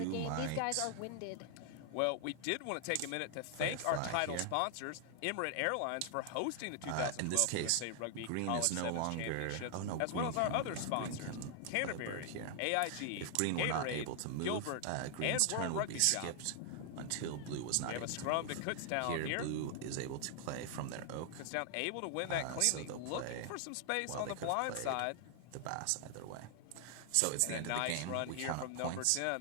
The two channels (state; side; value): different; both; correlation 0.00